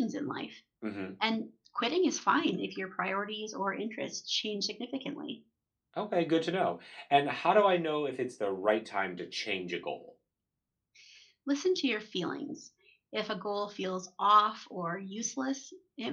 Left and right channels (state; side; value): identical; both; correlation 1.00